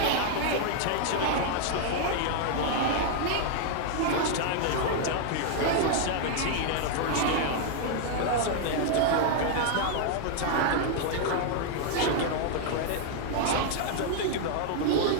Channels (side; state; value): both; different; correlation 0.00